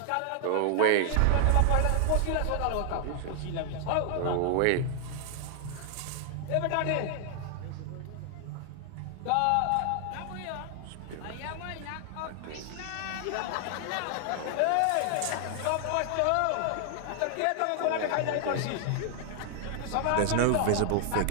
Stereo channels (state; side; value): different; both; correlation 0.00